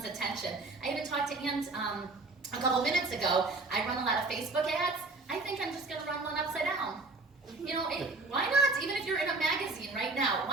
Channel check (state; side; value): quieter; left; 3.4 dB